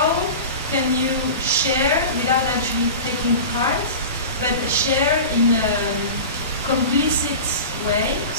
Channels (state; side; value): inverted; both; correlation -0.32